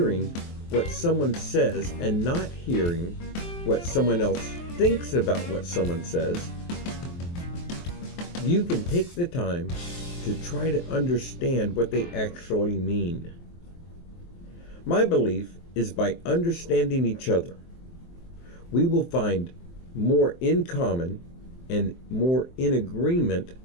what someone says and not hearing what someone else thinks about what someone says, you can take the time to try to understand what they actually mean. My belief is by understanding each other, we will find more in common and more in agreement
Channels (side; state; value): right; late; 23 ms